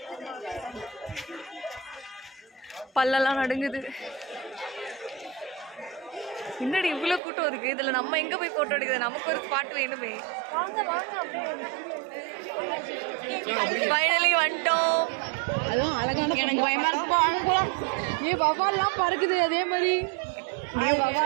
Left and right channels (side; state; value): left; drops out; at 7.2 s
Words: பல்லெல்லாம் நடுங்குது. முன்னாடி இவ்வளவு கூட்டம் இருக்கு. இதுல நம்ம எங்க போய் போட்டோ எடுக்குது? நமக்கு ஒரு ஸ்பாட் வேணுமே. ஃபைனலி வந்துட்டோம். அதுவும் அழகான எனக்கு பயமா இருக்கு. அங்க போலாம். ஏ வவால்லாம் பறக்குது அதே மாதிரி.